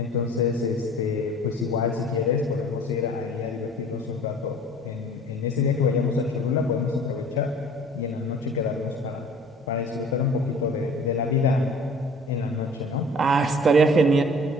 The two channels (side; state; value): both; normal; correlation 0.48